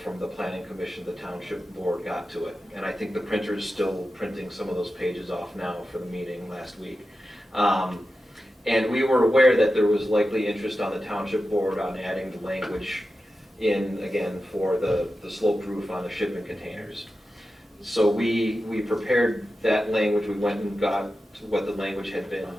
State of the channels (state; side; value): normal; both; correlation 0.92